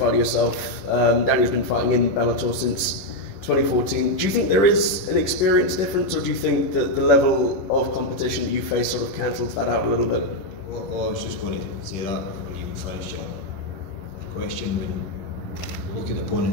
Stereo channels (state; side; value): late; right; 11 ms